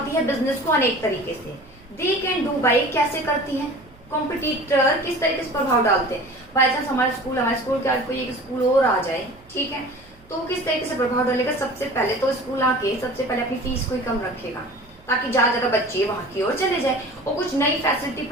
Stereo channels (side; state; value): right; noise; hum, 28 dB below the sound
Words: है बिजनेस को अनेक तरीके से। दे कैन डू बाई, कैसे करती है कॉम्पिटिटर, किस तरीके से प्रभाव डालते हैं। बाई चांस हमारे स्कूल के आज कोई एक स्कूल और आ जाए, ठीक है, तो किस तरीके से प्रभाव डालेगा। सबसे पहले तो स्कूल आके सबसे पहले अपनी फीस को ही कम रखेगा ताकि ज्यादा बच्चे वहां की ओर चले जाए, और कुछ नई फैसिलिटी